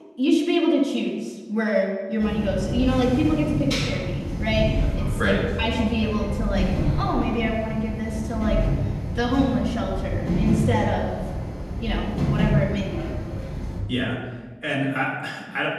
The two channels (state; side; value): identical; both; correlation 1.00